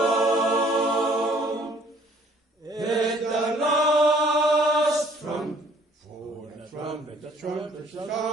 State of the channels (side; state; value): both; normal; correlation 0.58